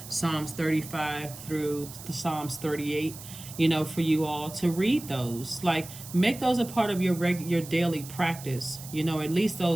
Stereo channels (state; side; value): noise; right; hiss, 14 dB below the sound